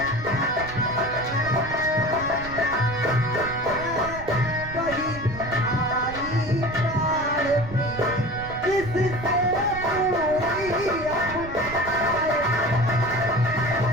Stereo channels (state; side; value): noise; right; rumble, 13 dB below the sound